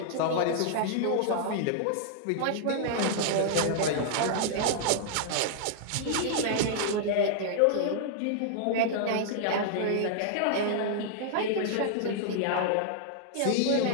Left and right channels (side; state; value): both; different; correlation -0.01